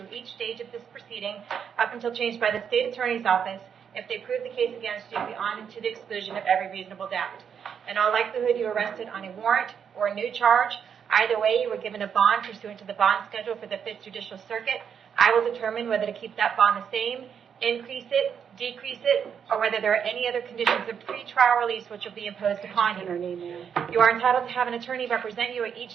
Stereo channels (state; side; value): quieter; left; 7.5 dB